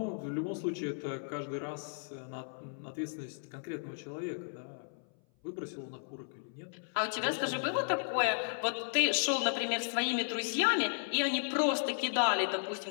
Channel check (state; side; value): silent; right; 55 dB below the other